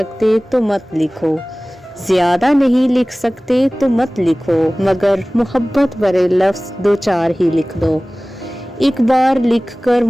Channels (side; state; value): both; normal; correlation 0.98